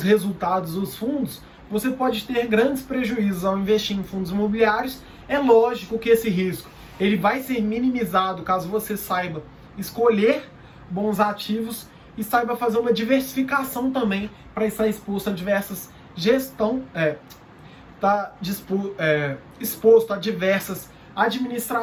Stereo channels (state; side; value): identical; both; correlation 1.00